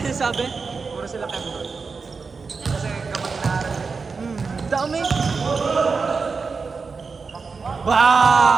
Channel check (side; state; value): left; quieter; 4.8 dB